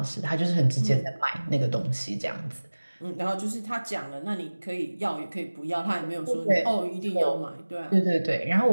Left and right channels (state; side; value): inverted; both; correlation -1.00